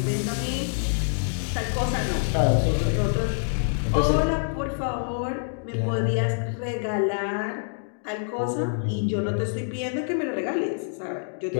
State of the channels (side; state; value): right; silent; digital silence